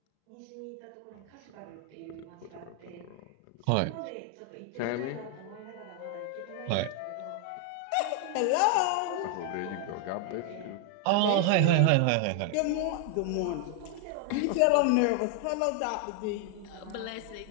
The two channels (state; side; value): different; both; correlation 0.00